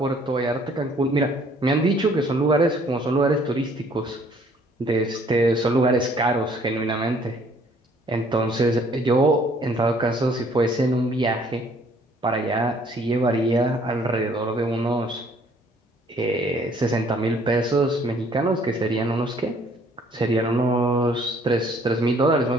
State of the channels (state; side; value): normal; both; correlation 0.60